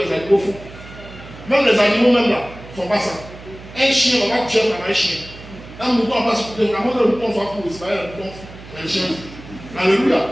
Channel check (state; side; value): noise; right; hum, 17 dB below the sound